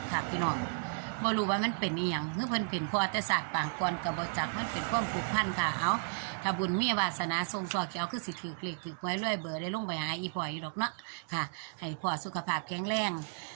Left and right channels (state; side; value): silent; left; digital silence